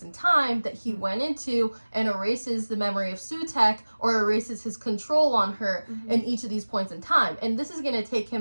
in time that he went into and erases the memory of Sutekh, or erases his control on her in each of these points in time. And this is going to take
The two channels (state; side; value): inverted; both; correlation -1.00